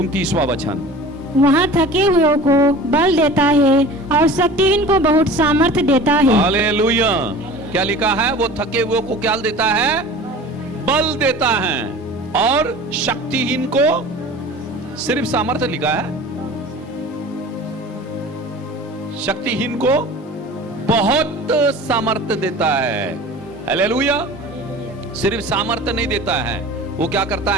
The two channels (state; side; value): normal; both; correlation 0.40